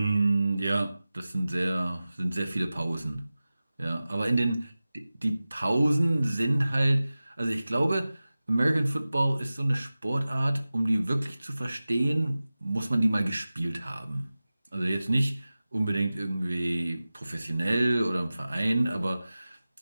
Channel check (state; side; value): inverted; both; correlation -0.96